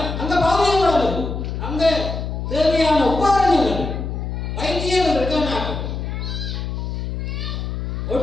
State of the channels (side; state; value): left; noise; hum, 4 dB below the sound